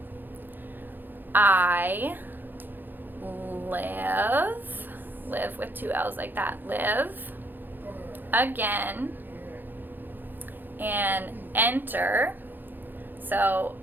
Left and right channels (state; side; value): late; left; 0.091 ms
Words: I live with two L's like that, live again and enter. So